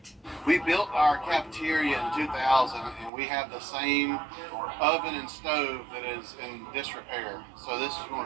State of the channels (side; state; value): left; drops out; at 3.1 s